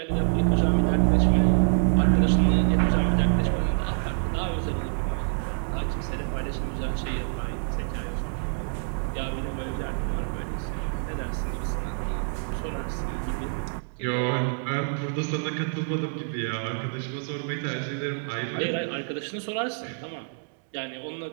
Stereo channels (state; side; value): silent; left; digital silence